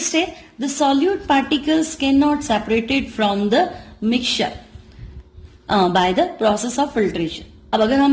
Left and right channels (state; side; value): identical; both; correlation 1.00